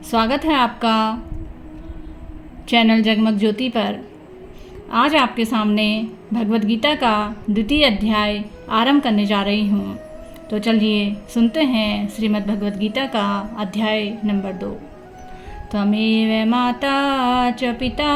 स्वागत है आपका चैनल जगमग ज्योति पर। आज आपके सामने भगवद गीता का द्वितीय अध्याय आरंभ करने जा रही हूँ। तो चलिए सुनते हैं श्रीमद् भगवद गीता का अध्याय नंबर 2। त्वमेव माता च पिता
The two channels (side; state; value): both; identical; correlation 1.00